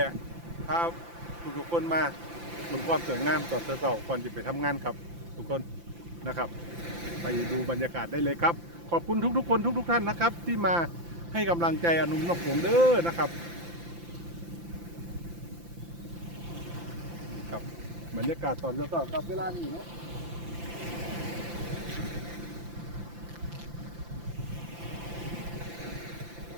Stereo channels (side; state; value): left; late; 5.8 ms